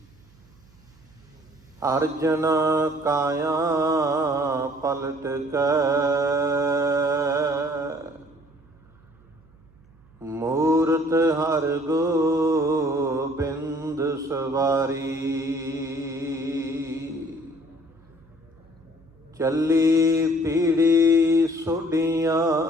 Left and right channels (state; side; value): noise; right; hum, 28 dB below the sound